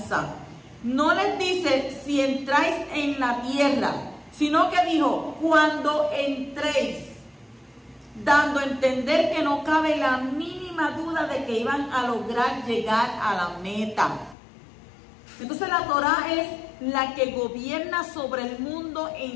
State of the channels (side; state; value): right; drops out; at 14.4 s